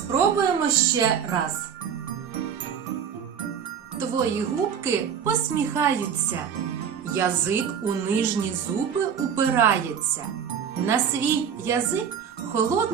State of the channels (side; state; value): left; quieter; 7.7 dB